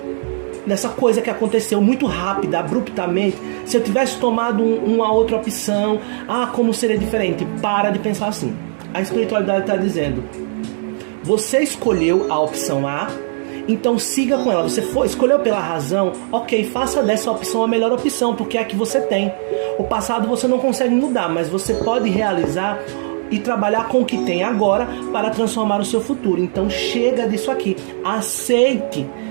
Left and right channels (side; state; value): left; silent; digital silence